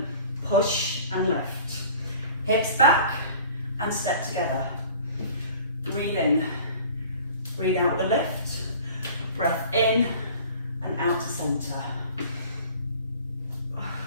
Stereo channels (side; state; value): both; inverted; correlation -0.45